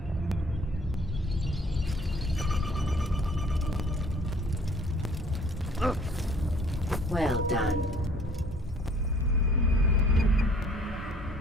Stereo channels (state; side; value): normal; both; correlation 0.56